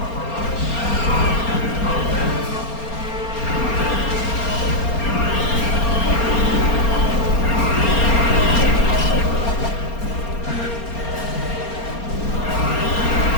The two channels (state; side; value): late; right; 4.3 ms